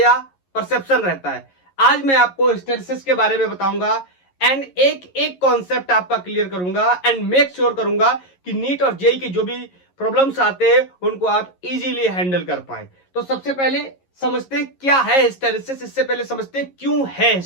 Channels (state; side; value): late; right; 11 ms